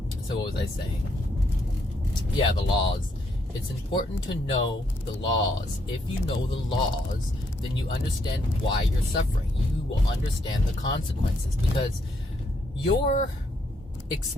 So what was I saying? Yeah, the laws. It's important to know the laws. If you know the laws, then you understand why you're suffering. You will understand the consequences, because your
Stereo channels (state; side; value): normal; both; correlation 0.74